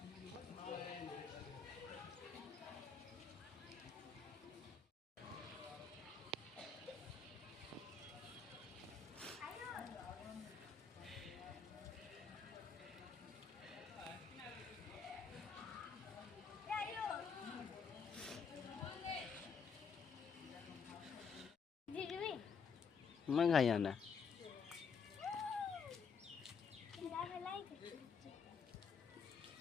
मैं खाई आना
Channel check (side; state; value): right; quieter; 5.8 dB